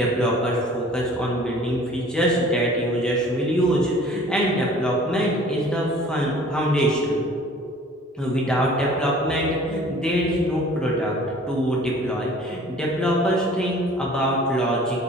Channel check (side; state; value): both; normal; correlation 0.49